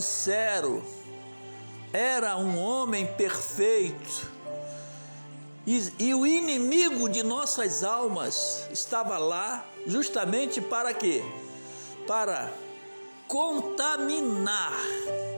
era um homem perfeito. E o inimigo de nossas almas estava lá justamente para quê? Para contaminar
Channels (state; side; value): inverted; both; correlation -1.00